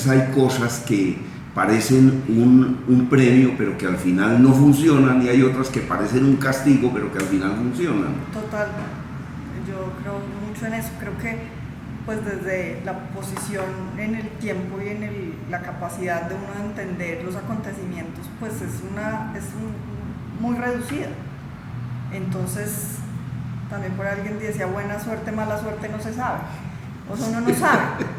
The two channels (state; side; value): identical; both; correlation 1.00